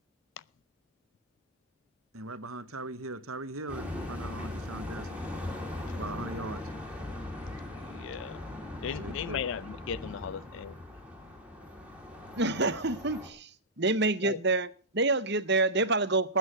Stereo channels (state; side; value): normal; both; correlation -0.04